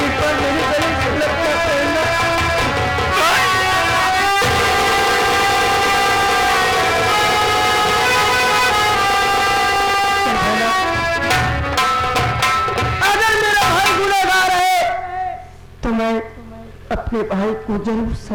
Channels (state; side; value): identical; both; correlation 1.00